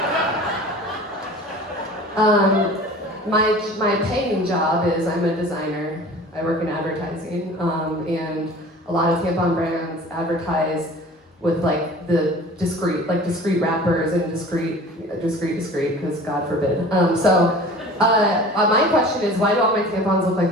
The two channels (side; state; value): both; normal; correlation 0.42